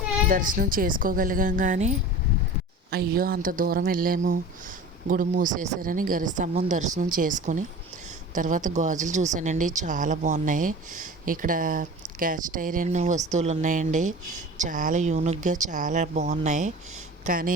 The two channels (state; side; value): normal; both; correlation 0.37